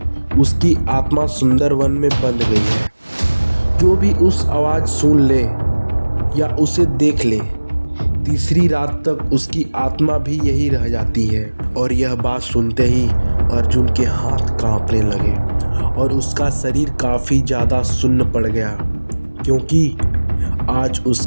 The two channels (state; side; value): inverted; both; correlation -1.00